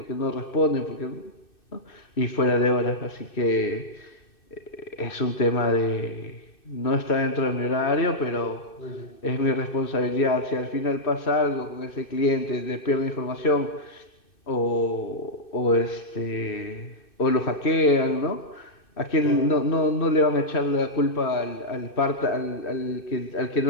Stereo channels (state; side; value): late; right; 2.6 ms